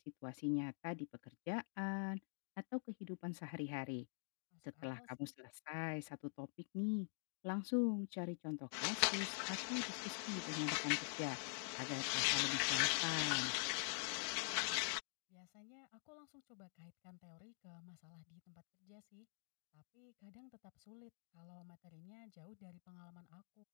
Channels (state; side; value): silent; right; digital silence